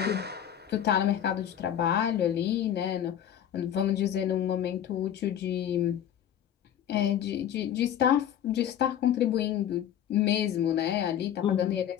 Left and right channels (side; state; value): right; quieter; 10.1 dB